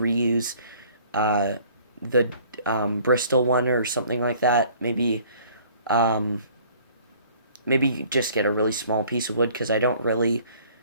the Bristol one or something like that. Maybe just get a really small piece of wood because I don't really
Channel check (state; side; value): inverted; both; correlation -0.55